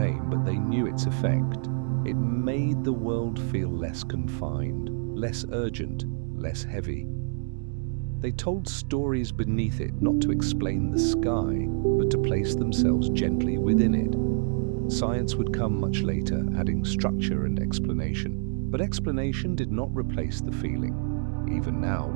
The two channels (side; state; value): left; silent; digital silence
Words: but they knew its effect. It made the world feel less confined, less urgent, less heavy. They told stories beneath it, not to explain the sky, but to place themselves gently within it. Science would come much later, adding structure and explanation. But explanation did not replace the feeling. Even now,